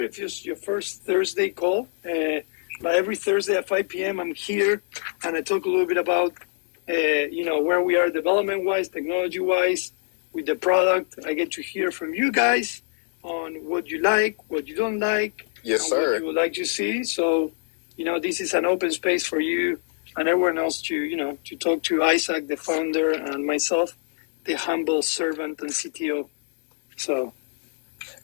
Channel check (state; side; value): silent; right; digital silence